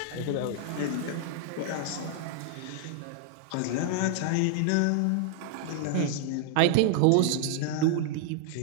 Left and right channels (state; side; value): different; both; correlation 0.00